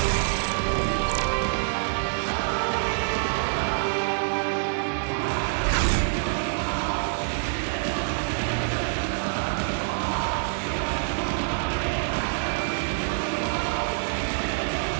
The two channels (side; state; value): left; silent; digital silence